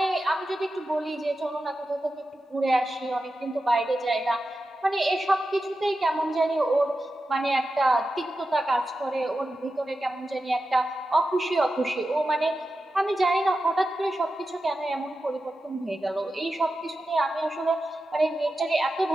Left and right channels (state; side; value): normal; both; correlation 0.91